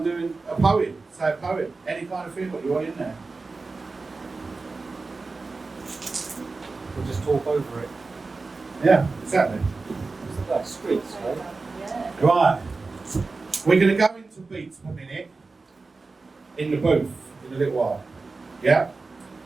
doing a poem, say a poem. Any kind of thing what you want in there. We'll just talk over it. Yeah, exactly. It's like streets, right? Yeah. Right. We're going to go into beats per minute in the booth in a little while. Yeah?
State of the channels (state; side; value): quieter; left; 3.9 dB